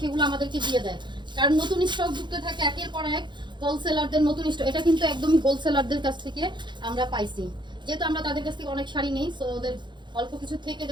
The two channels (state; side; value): late; left; 0.22 ms